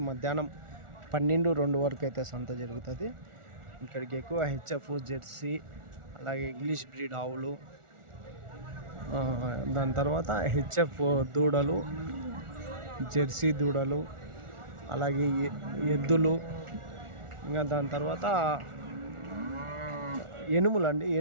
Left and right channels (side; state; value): left; late; 1.4 ms